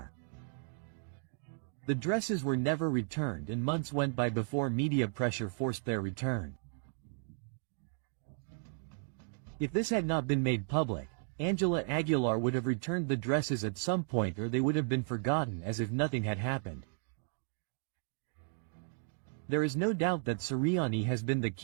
The dresses were never returned, and months went by before media pressure forced their return. If this had not been made public, Ángela Aguilar would have returned the dresses at some point, or they would have been forgotten as if nothing had happened. There is no doubt that Siriani has been the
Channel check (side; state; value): left; silent; 55 dB below the other